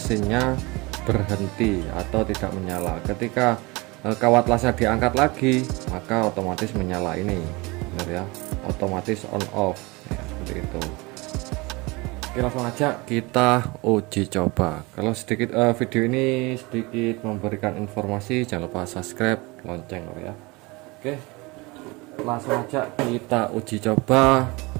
berhenti atau tidak menyala. Ketika kawat lasnya diangkat lagi, maka otomatis menyala ini, benar ya, otomatis on off ya, seperti itu. Oke, langsung aja kita uji coba. Kalau sedikit video ini sedikit memberikan informasi, jangan lupa subscribe, lonceng ya. Oke, langsung aja kita uji coba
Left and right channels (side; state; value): left; quieter; 24.8 dB